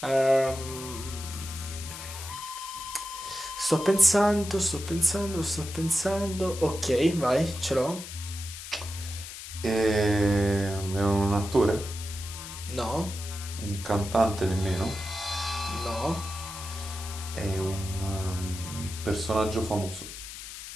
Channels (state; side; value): noise; left; hiss, 11 dB below the sound